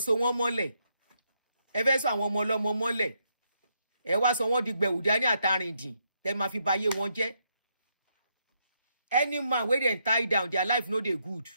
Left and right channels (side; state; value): both; inverted; correlation -0.78